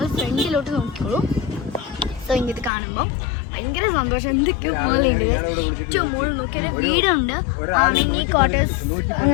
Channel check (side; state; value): right; drops out; at 2.7 s